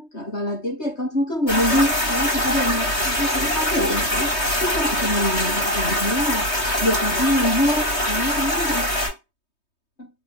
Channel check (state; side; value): late; right; 3.2 ms